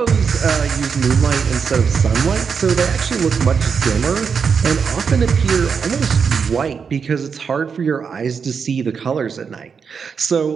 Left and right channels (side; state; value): left; quieter; 6.1 dB